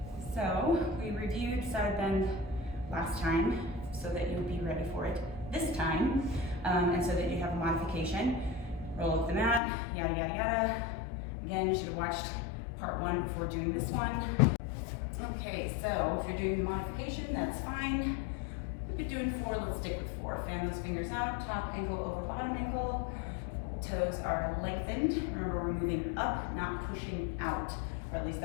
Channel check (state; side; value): drops out; right; at 9.6 s